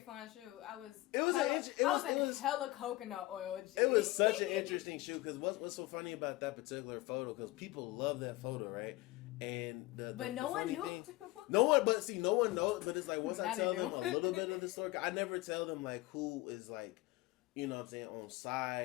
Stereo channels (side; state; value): right; quieter; 19.4 dB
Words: shoot. I was hella coconut oil. G. It was such an interesting shoot, because what's so funny about that particular photo, because people love that photo, right? And no one knew. No one knows. But it's like once I tell them a little bit of the story, I never tell them like who is like, you know what I'm saying, on